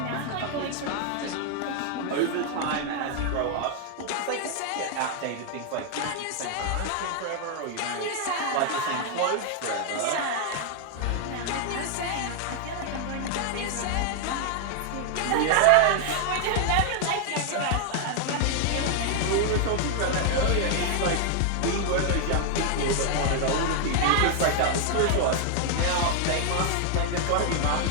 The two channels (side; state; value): both; different; correlation 0.00